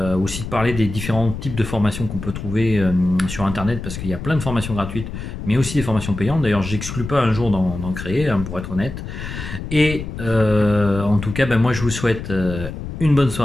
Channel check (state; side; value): noise; left; rumble, 8 dB below the sound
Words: aussi de parler des différents types de formations qu'on peut trouver sur internet, parce qu'il y a plein de formations gratuites mais aussi des formations payantes. D'ailleurs j'exclus pas un jour d'en créer, hein, pour être honnête. Et en En tout cas, ben, moi je vous souhaite une bonne